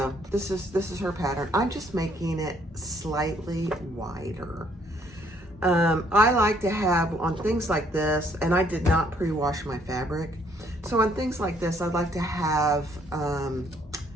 this is her pattern. I'm just making it slightly wider. I like to have on things like this, and I did not pre-wash my fabric. So on things like this, I'd like to have a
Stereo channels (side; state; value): both; normal; correlation 0.66